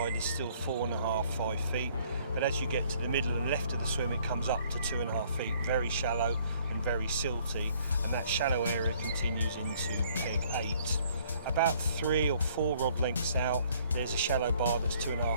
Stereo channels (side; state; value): both; inverted; correlation -0.61